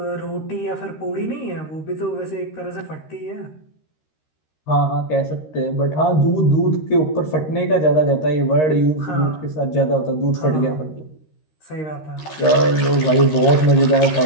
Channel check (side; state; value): right; late; 13 ms